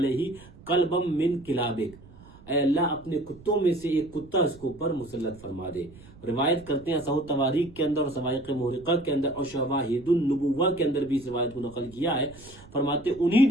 قلبم من کلابک، اے اللہ اپنے کتوں میں سے ایک کتا اس کو پر مسلط فرما دے۔ روایت کرتے ہیں صحیح تواریخ کے اندر اور سوائق محرقہ کے اندر اور شواہد النبوہ کے اندر بھی اس روایت کو نقل کیا ہے، فرماتے انہی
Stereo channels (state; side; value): noise; right; rumble, 21 dB below the sound